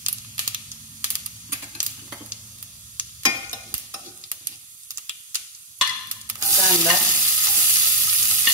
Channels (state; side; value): normal; both; correlation 0.00